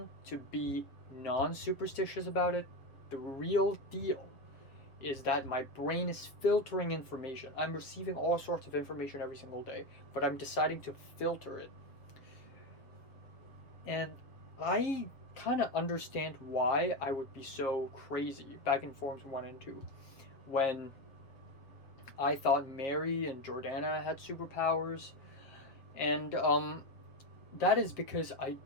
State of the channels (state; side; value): late; right; 7.4 ms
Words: to be non-superstitious about it, the real deal is that my brain is filtering information. I'm receiving all sorts of information every single day, but I'm deciding to filter it. And I kind of understand why I would be so crazy back in Forms 1 and 2 when I thought Mary and Jordana had superpowers, and that is because I